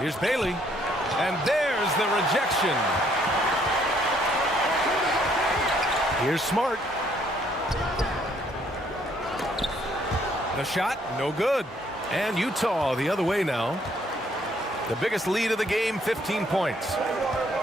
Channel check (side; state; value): both; normal; correlation 0.67